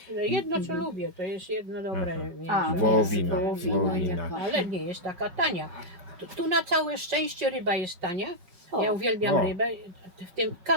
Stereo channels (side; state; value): left; late; 5.5 ms